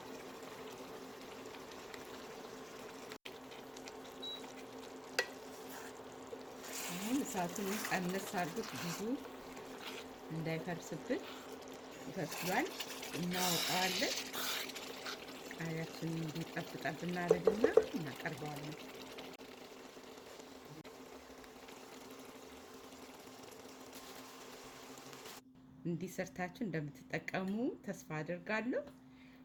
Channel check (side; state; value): both; identical; correlation 1.00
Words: አሁን እሳቱን ቀነስ አድርጉት፣ ብዙ እንዳይፈርስብን። ይፈስሏል፣ እናወጣዋለን። ቃሪያችንን እንዲጠብጠብ እናደርግና እናቀርበዋለን። እንዲሰርታችሁ እንደምትጠቀሙ ተስፋ አድርጋለሁ።